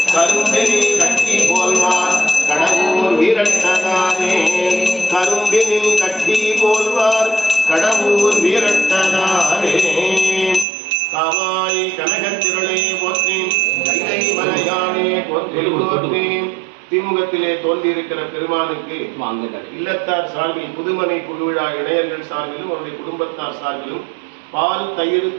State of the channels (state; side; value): drops out; left; at 10.7 s